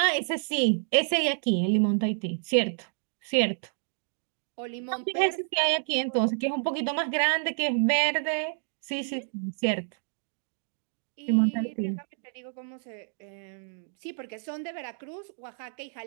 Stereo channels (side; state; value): left; silent; digital silence